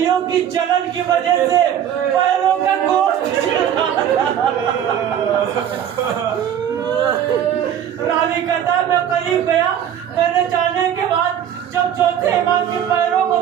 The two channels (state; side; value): quieter; left; 9.7 dB